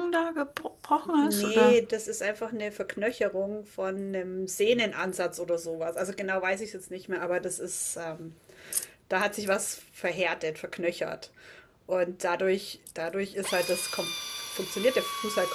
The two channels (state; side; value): identical; both; correlation 1.00